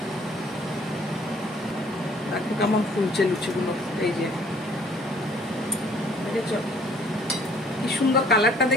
দেখো কেমন ফুলছে লুচিগুলো, এই যে দেখেছো কি সুন্দর কালারটা,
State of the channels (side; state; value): both; normal; correlation 0.58